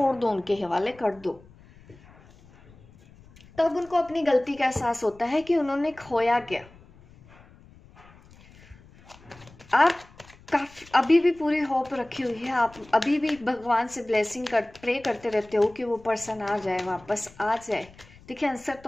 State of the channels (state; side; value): noise; left; rumble, 24 dB below the sound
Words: दो, उनके हवाले कर दो। तब उनको अपनी गलती का एहसास होता है कि उन्होंने खोया क्या। आप काफी अभी भी पूरी होप रखी हुई है। आप अभी भी भगवान से ब्लेसिंग प्रे करते रहते हो कि वो पर्सन आ जाए, वापस आ जाए। देखिए, आंसर